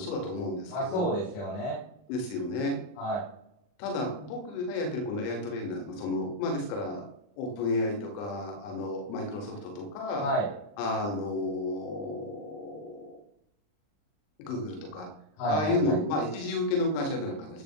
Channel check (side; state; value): right; late; 39 ms